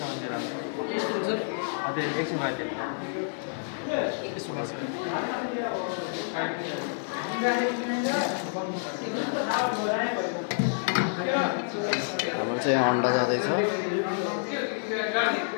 एकछिन हाम्रो चाहिँ यहाँ अन्डा जाँदैछ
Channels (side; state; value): right; silent; digital silence